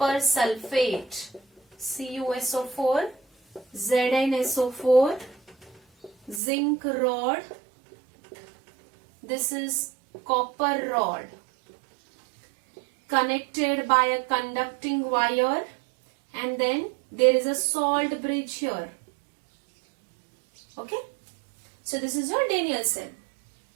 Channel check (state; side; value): drops out; left; at 6.4 s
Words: sulfate, CuSO4, ZnSO4, zinc rod. This is copper rod connected by a conducting wire, and then there is a salt bridge here. Okay? So this is your Daniell cell.